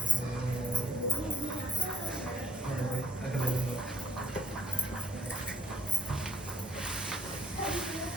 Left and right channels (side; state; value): both; normal; correlation 0.68